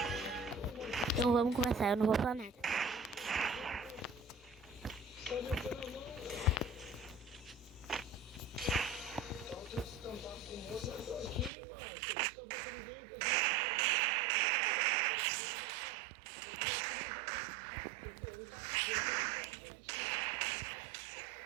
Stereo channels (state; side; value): drops out; left; at 11.5 s